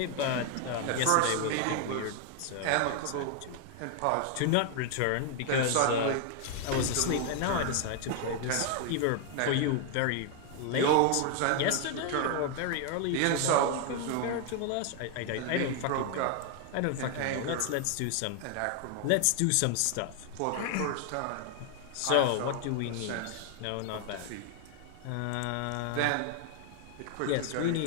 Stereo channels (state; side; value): different; both; correlation 0.00